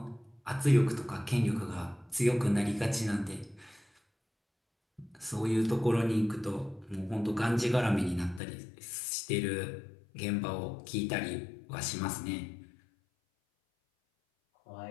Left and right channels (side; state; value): right; drops out; at 8.4 s